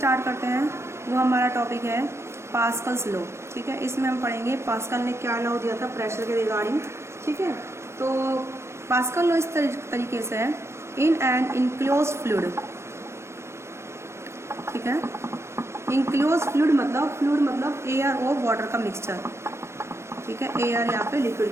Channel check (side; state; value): left; late; 0.13 ms